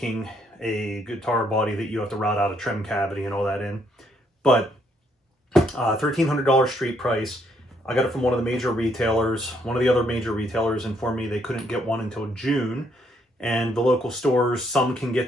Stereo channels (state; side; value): normal; both; correlation 0.71